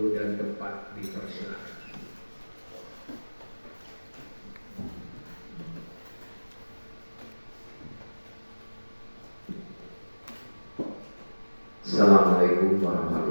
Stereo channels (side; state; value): both; inverted; correlation -1.00